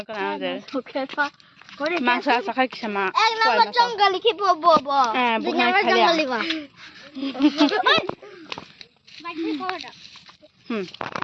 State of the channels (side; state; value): both; identical; correlation 1.00